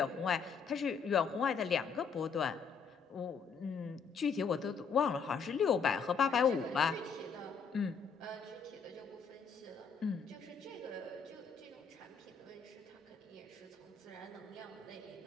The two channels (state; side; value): quieter; right; 5.9 dB